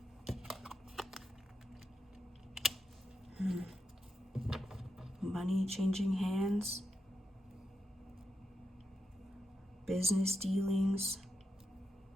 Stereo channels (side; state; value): both; normal; correlation 0.86